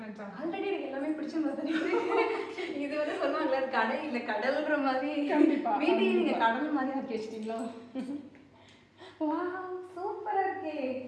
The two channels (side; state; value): both; identical; correlation 1.00